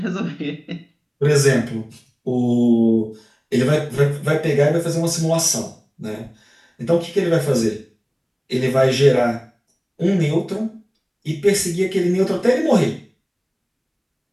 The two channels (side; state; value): both; identical; correlation 1.00